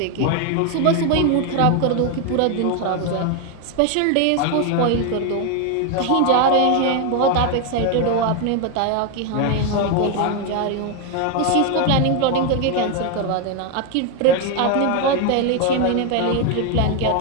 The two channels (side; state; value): both; different; correlation 0.01